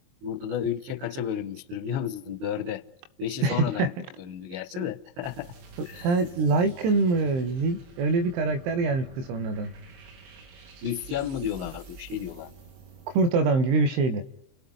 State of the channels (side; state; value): left; late; 23 ms